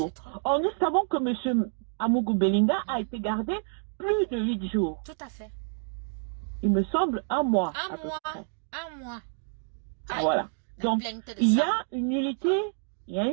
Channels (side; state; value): left; silent; digital silence